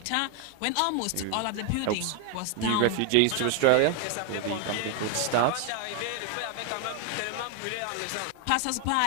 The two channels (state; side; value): different; both; correlation 0.01